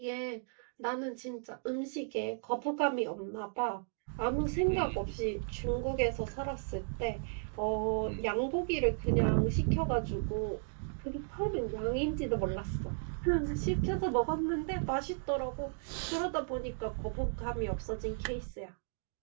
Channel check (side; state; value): left; silent; digital silence